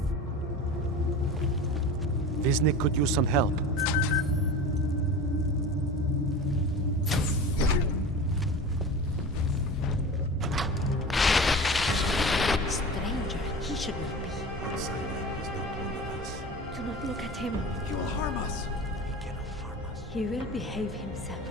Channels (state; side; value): normal; both; correlation 0.33